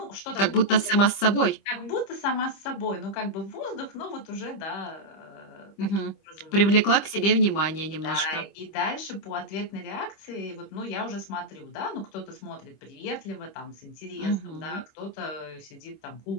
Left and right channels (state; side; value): late; right; 25 ms